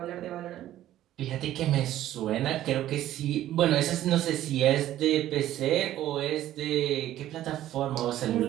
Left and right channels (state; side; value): quieter; left; 13.2 dB